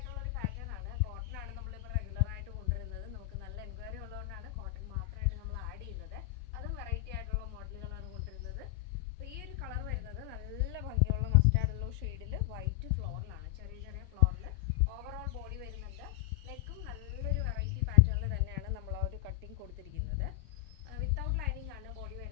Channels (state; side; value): quieter; right; 17.4 dB